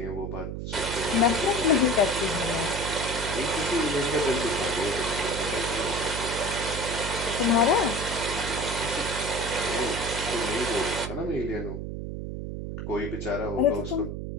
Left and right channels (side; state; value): right; noise; hum, 6 dB below the sound